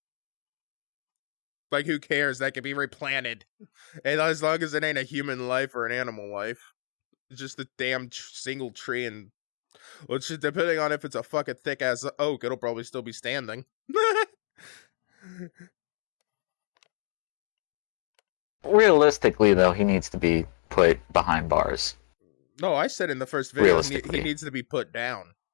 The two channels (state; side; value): silent; right; digital silence